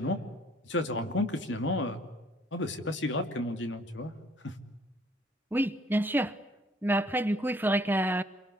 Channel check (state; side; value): normal; both; correlation 0.60